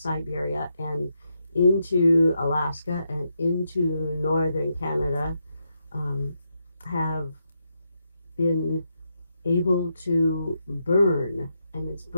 and into Alaska and into northern Canada have been able to burn, and it's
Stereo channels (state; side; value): inverted; both; correlation -0.82